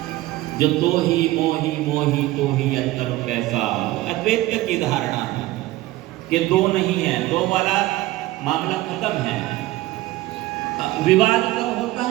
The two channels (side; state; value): left; quieter; 17.3 dB